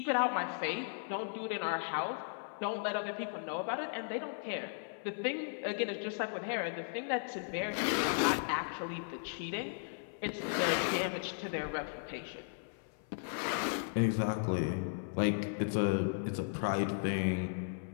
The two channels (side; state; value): right; silent; 54 dB below the other